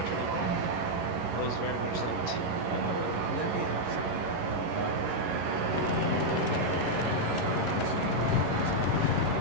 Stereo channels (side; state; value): left; late; 11 ms